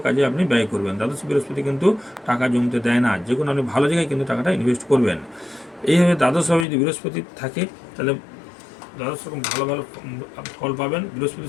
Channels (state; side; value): drops out; right; at 6.7 s